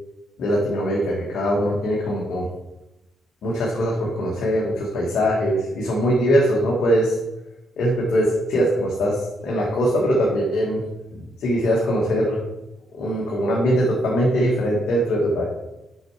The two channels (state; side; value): normal; both; correlation 0.75